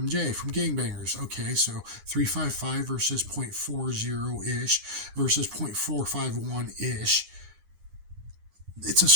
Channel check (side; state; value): left; late; 9.8 ms